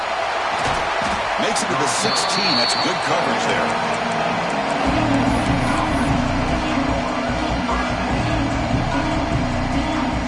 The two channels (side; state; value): both; identical; correlation 1.00